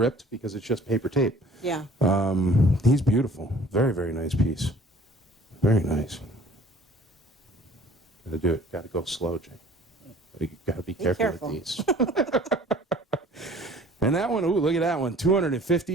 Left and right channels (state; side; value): normal; both; correlation 0.52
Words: because it's just paper tape. Yeah. He's beautiful. Very, very nice piece. Very nice. Gotta do it. Gotta go slow, Jay. You gotta be careful with these. And that one, ooh, look at that one.